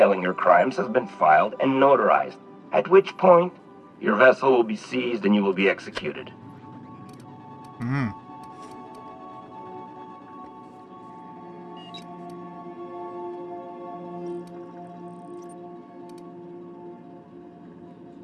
your crimes has been filed and notarized, at which point your vessel will be seized and you will be executed.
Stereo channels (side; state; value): both; identical; correlation 1.00